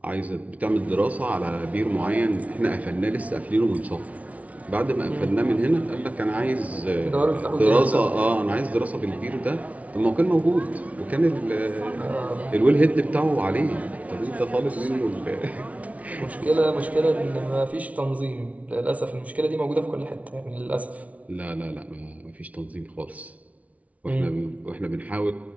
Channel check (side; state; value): left; late; 0.068 ms